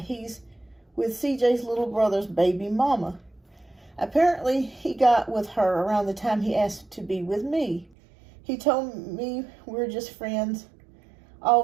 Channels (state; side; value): drops out; left; at 7.9 s